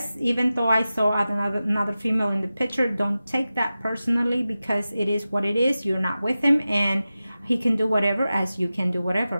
even though I saw another female in the picture, don't take that personally, because it is what it is. You're not with him, and he can do whatever as you can do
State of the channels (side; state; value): both; inverted; correlation -0.94